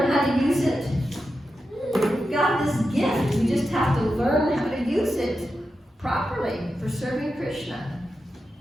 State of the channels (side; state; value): both; normal; correlation 0.89